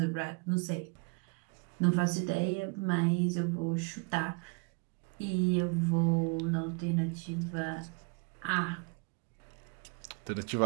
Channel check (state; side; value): quieter; left; 33.0 dB